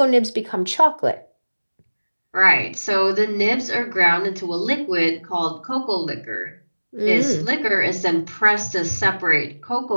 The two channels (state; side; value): inverted; both; correlation -1.00